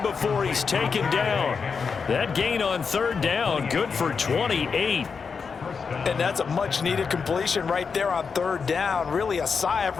before he's taken down. That gain on 3rd down, good for 28. And that's a much-needed completion right there on 3rd down. Really a sigh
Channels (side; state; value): right; quieter; 5.5 dB